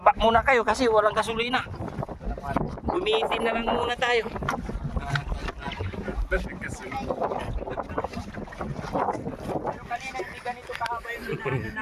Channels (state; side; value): identical; both; correlation 1.00